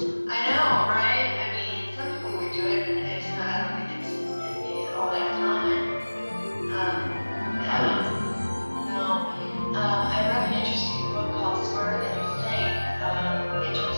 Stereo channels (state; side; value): inverted; both; correlation -1.00